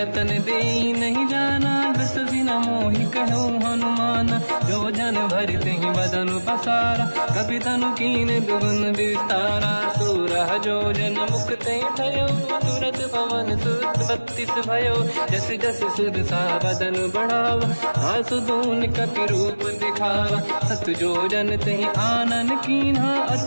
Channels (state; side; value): inverted; both; correlation -1.00